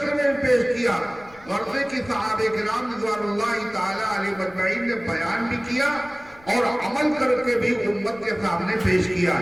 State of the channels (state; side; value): noise; left; rumble, 24 dB below the sound